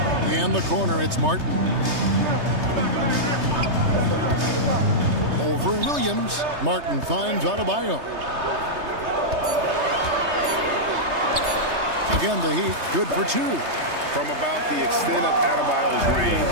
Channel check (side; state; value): left; late; 3.2 ms